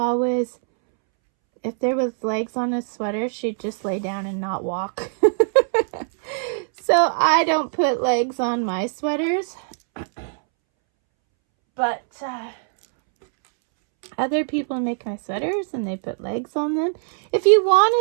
if there was legs on a sweater, she'd just lay down and not walk. So I don't put legs on my sweaters. But other people make my sweaters and they put legs on them. If you want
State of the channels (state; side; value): silent; left; 64 dB below the other